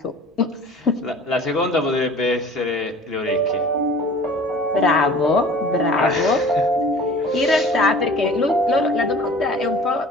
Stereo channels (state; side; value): normal; both; correlation 0.45